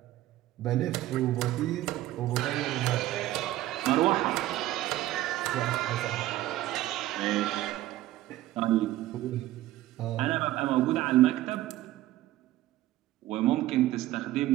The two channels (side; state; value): left; quieter; 15.3 dB